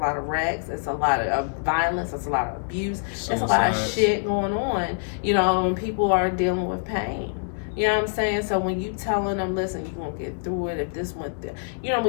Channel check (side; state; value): right; silent; 62 dB below the other